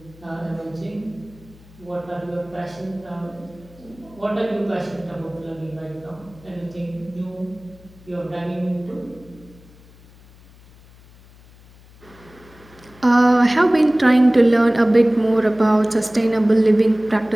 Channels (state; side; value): noise; left; hum, 25 dB below the sound